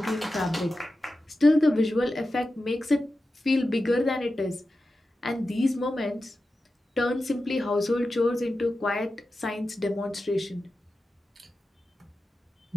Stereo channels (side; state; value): both; normal; correlation 0.92